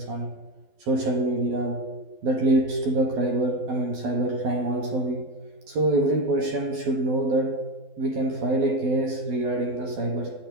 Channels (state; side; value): late; left; 12 ms